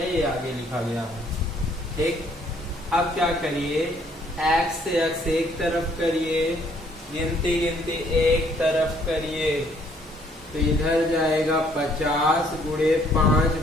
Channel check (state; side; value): normal; both; correlation 0.65